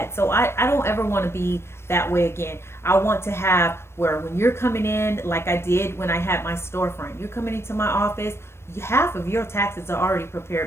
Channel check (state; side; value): late; right; 0.12 ms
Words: So I don't ever want to be that way again. I want to have where when you're coming in, like I did when I had my storefront, you're coming into my office, half of your taxes are already